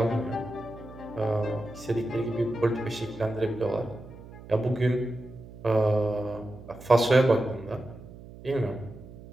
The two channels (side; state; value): right; noise; hum, 17 dB below the sound